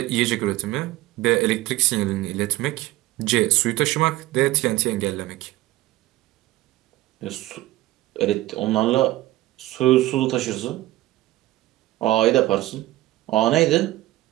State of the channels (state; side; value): quieter; left; 16.9 dB